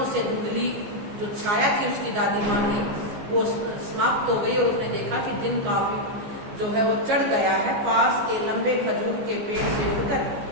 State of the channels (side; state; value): left; late; 14 ms